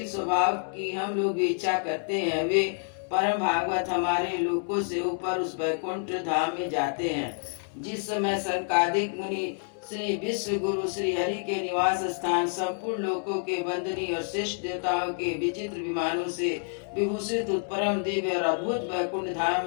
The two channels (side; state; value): right; silent; 59 dB below the other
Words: स्वभाव की हम लोग भी इच्छा करते हैं, वे परम भागवत हमारे लोकों से ऊपर उस वैकुंठ धाम में जाते हैं। जिस समय संकादिक मुनि श्री विश्व गुरु श्री हरि के निवास स्थान संपूर्ण लोकों के वंदनीय और श्रेष्ठ देवताओं के विचित्र विमानों से विभूषित परम दिव्य और अद्भुत वैकुंठ धाम